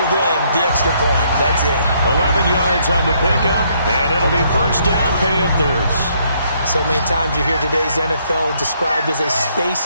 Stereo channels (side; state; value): both; inverted; correlation -0.70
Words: than the extra point. That's it. 11 yards on the pickup, and it'll be first down Panthers. So many times you hear today's NFL described as a